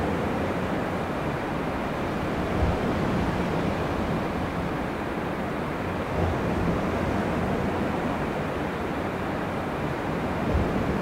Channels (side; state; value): both; identical; correlation 1.00